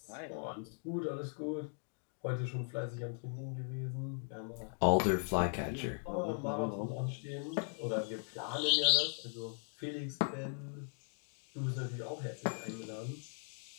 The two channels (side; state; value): right; silent; 52 dB below the other